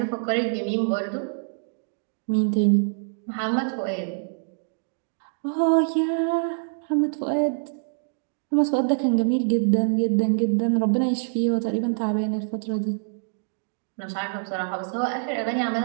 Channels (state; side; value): silent; left; digital silence